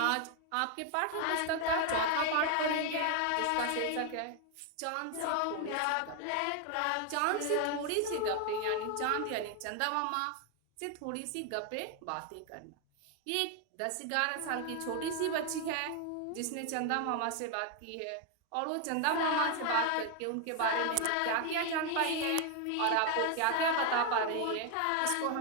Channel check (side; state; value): both; different; correlation 0.01